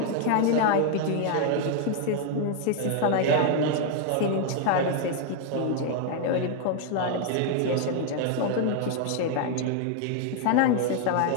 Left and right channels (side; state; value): both; different; correlation 0.00